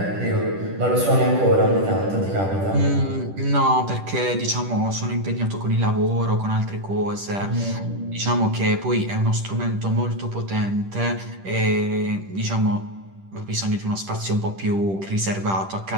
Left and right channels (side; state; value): left; late; 10 ms